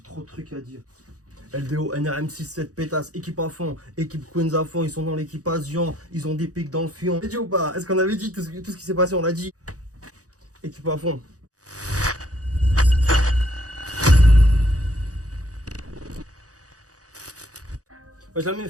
trop de trucs à dire. LDO, NRM67, pétasse, équipe à fond, équipe Queens à fond, ils sont dans l'équipation, ils ont des pics dans le fion. J'ai dit ou pas? Est-ce qu'on avait dit tout ce qui s'est passé? On l'a dit. Équipe à fond. Wesh la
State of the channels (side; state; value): left; late; 0.67 ms